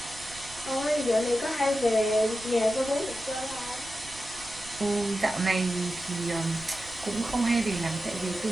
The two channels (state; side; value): noise; right; rumble, 20 dB below the sound